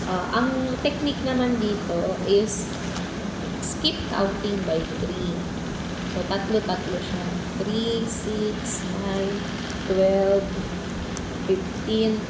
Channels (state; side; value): identical; both; correlation 1.00